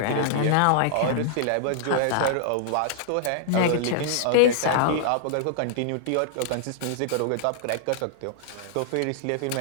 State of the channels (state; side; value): different; both; correlation -0.01